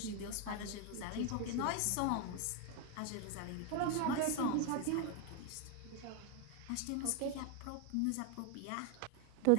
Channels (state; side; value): different; both; correlation 0.01